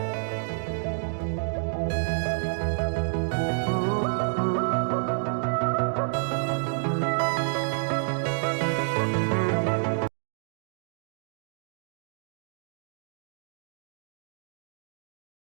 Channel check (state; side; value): silent; left; digital silence